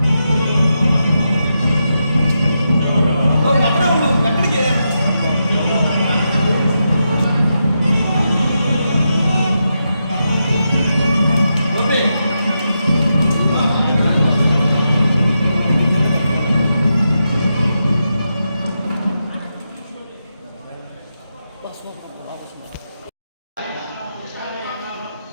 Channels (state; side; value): inverted; both; correlation -0.86